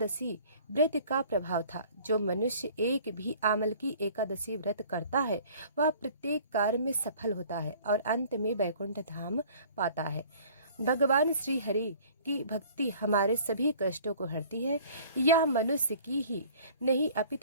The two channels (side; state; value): both; inverted; correlation -0.50